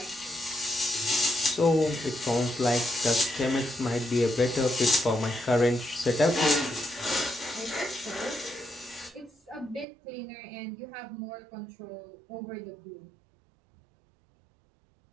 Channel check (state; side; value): drops out; left; at 9.9 s